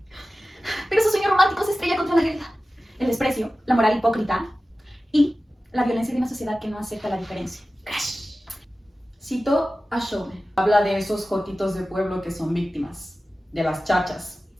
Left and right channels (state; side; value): normal; both; correlation 0.95